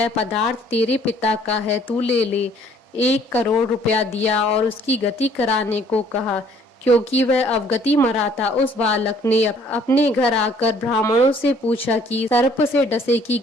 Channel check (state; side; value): normal; both; correlation 0.59